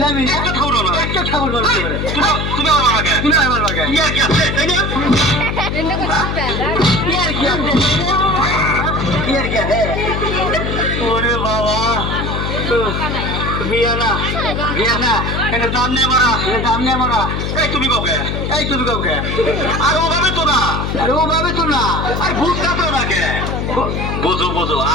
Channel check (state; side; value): noise; left; hum, 2 dB below the sound